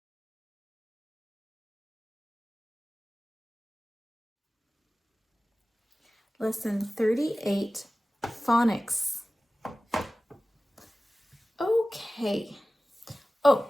Lesson 38, Phonics. Okay.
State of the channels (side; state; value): both; normal; correlation 0.96